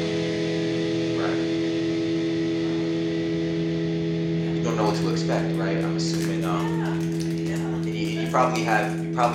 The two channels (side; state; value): both; identical; correlation 1.00